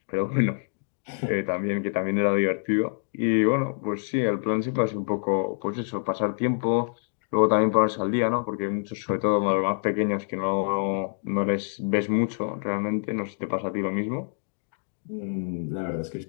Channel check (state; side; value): silent; right; digital silence